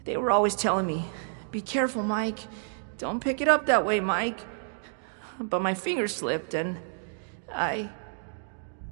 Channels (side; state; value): left; silent; digital silence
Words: They were always telling me, "Be careful, Mike. Don't pick it up that way, Mike." But my finger slipped and I